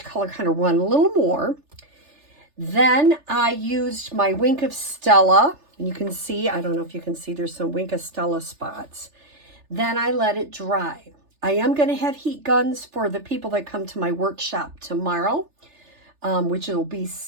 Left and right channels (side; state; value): left; late; 3.4 ms